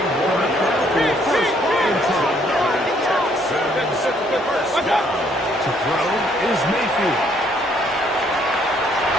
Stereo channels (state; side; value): normal; both; correlation 0.66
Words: To throw is Mayfield.